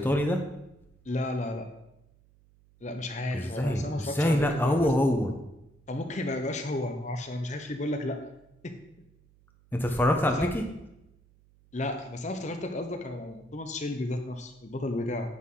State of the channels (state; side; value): noise; right; hum, 29 dB below the sound